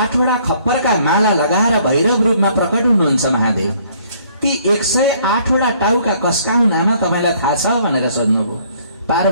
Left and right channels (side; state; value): both; inverted; correlation -0.62